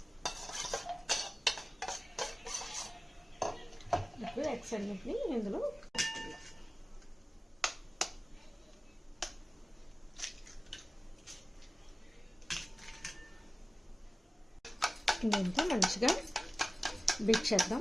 ఇప్పుడు ఎగ్స్ అన్నిటిని ఇందులో దీంతో మంచిగా బీట్ చేద్దాం.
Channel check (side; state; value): both; normal; correlation 0.97